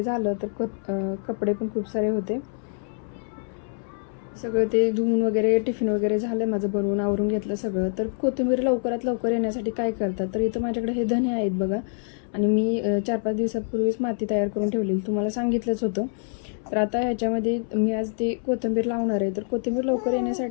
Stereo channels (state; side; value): silent; right; 61 dB below the other